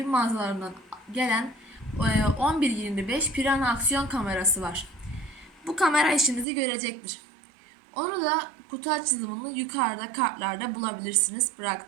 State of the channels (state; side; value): drops out; left; at 6.5 s